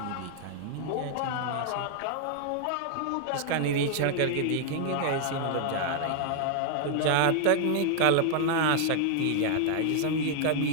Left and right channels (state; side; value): different; both; correlation 0.00